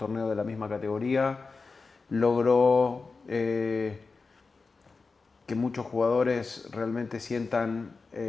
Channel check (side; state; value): right; quieter; 4.3 dB